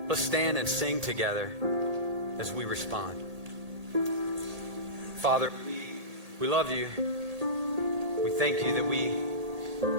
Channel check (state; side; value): late; left; 1.8 ms